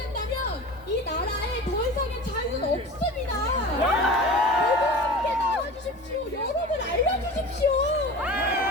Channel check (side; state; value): both; normal; correlation 0.35